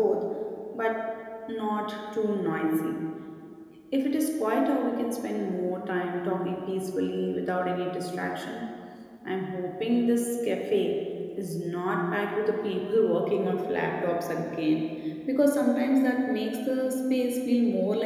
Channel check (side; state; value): both; identical; correlation 1.00